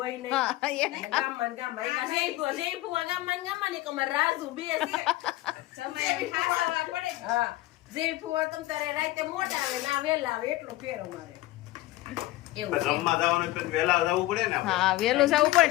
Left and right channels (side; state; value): right; quieter; 17.6 dB